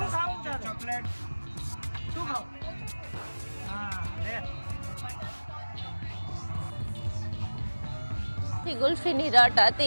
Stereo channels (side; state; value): both; inverted; correlation -1.00